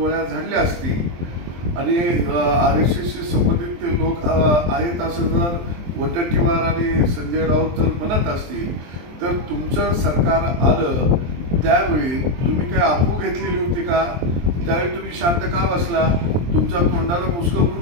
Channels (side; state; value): left; late; 23 ms